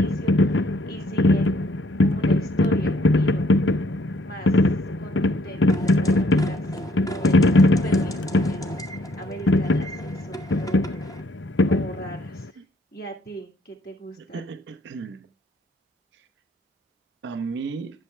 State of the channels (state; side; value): normal; both; correlation 0.65